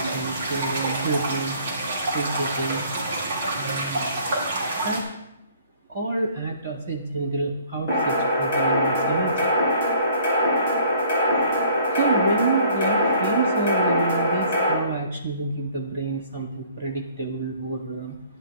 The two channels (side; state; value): both; inverted; correlation -0.55